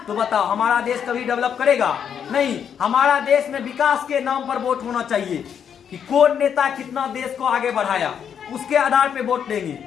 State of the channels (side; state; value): right; quieter; 8.0 dB